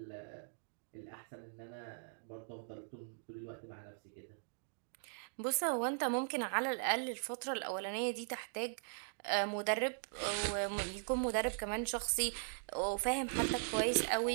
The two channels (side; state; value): left; silent; digital silence